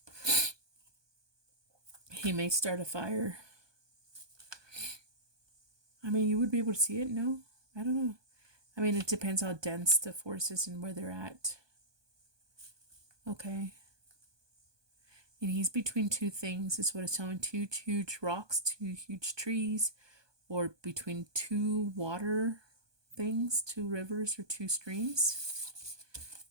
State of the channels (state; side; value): late; left; 1.2 ms